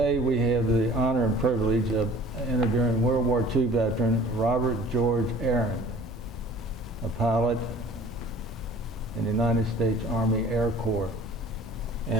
we have the honor and privilege of interviewing World War II veteran Robert George Arand, a pilot in the United States Army Air Corps.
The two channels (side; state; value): both; normal; correlation 0.48